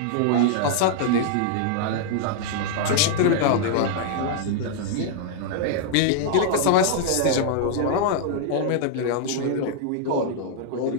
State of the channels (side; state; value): both; different; correlation -0.01